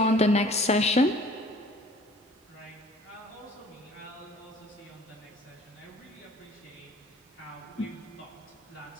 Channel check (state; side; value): normal; both; correlation 0.51